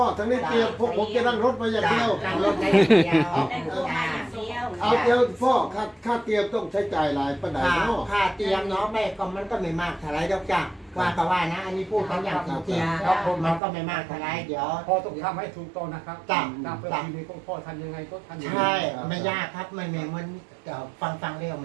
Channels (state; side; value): drops out; left; at 13.6 s